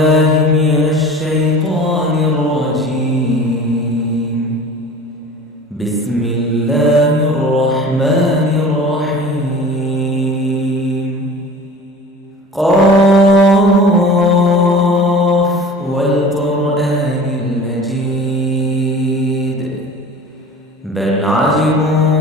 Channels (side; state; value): both; normal; correlation 0.41